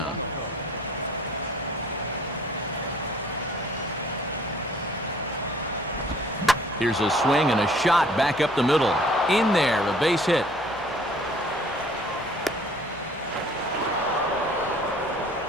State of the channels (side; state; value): both; normal; correlation 0.54